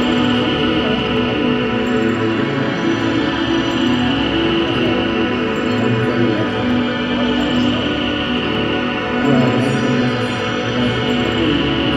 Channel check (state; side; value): identical; both; correlation 1.00